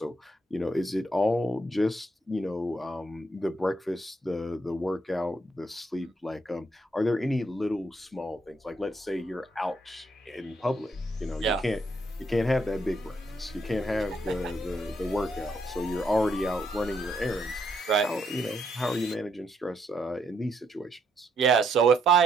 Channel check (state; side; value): normal; both; correlation 0.74